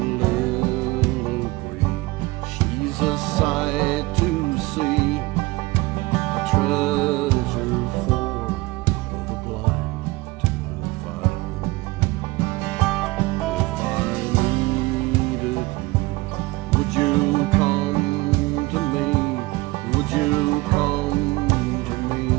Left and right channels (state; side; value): quieter; left; 21.4 dB